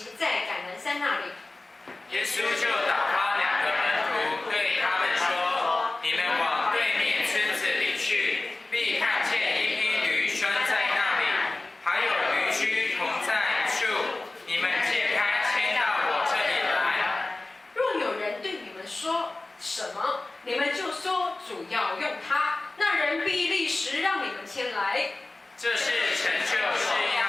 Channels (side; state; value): right; quieter; 3.0 dB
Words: 在橄榄山那里。耶稣就打发2个门徒，对他们说：“你们往对面村子里去，必看见一匹驴拴在那里，还有驴驹同在处。你们解开，牵到我这里来。若有人对你们说什么，你们就说主要用它，那人必立时让你们牵来。”这是成就是